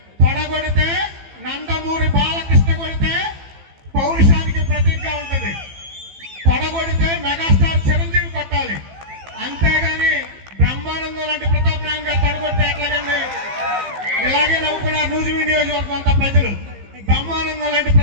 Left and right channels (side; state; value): left; late; 15 ms